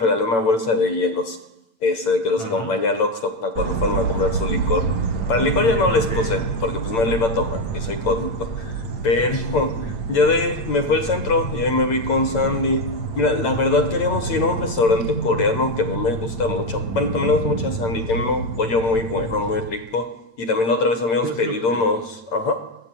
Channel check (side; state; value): right; late; 8.9 ms